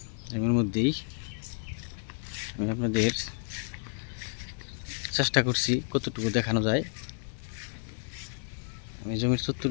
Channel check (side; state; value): right; silent; digital silence